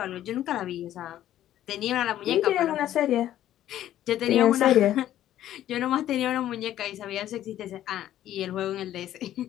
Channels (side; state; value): right; quieter; 12.4 dB